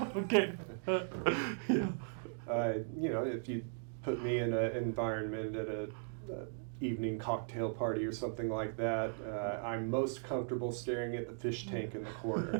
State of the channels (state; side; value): silent; left; digital silence